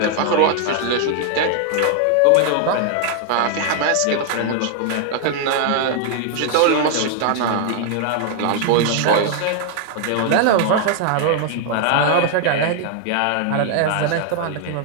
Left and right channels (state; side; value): different; both; correlation 0.00